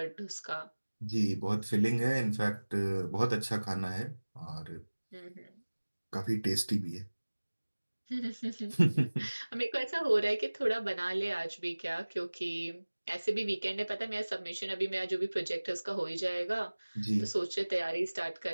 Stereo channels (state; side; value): inverted; both; correlation -1.00